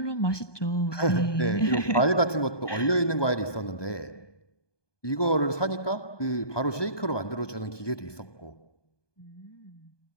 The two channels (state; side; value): late; right; 1.2 ms